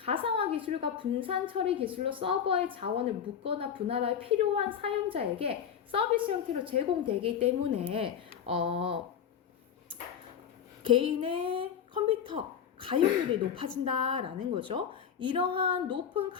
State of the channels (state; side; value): quieter; right; 8.2 dB